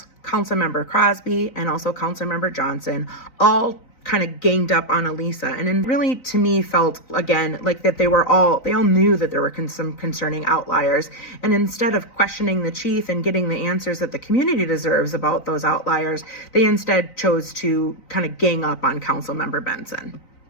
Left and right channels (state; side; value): late; right; 3.9 ms